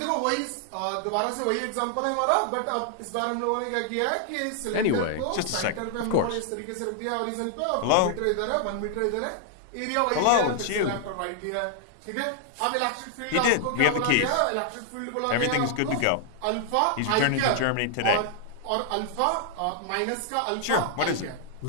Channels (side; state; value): both; different; correlation 0.00